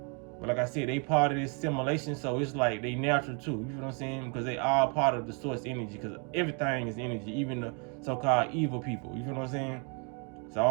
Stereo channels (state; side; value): quieter; left; 36.4 dB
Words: But like I said, they part of this simulation, so it's like they natural too. You know what I'm saying? Because they are part of the source energy. Because everything is energy, even the so-called evil people. You know what I'm saying? So